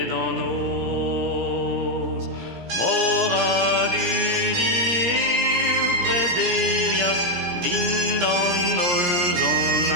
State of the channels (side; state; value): left; late; 17 ms